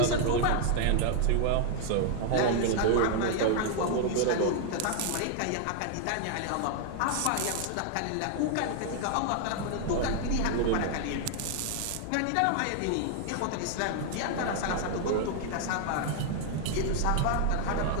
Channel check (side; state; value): both; different; correlation 0.00